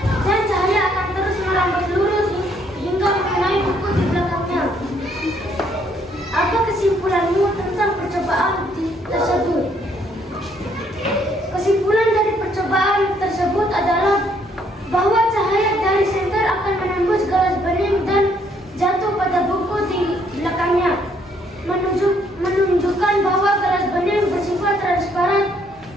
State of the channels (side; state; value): both; normal; correlation 0.68